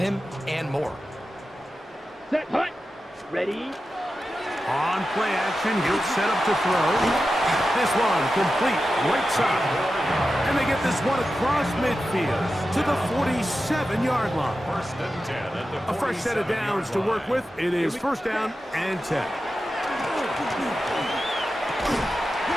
and more. Set. Hut. Ready. On play action, he'll set up to throw. This one complete, right side. And they get this one across midfield to the 47-yard line. First and 10 at the 47-yard line. A fresh set of downs to work with. It is first down and 10.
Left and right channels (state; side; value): normal; both; correlation 0.92